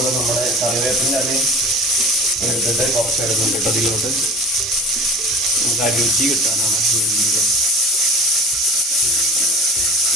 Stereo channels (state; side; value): normal; both; correlation 0.38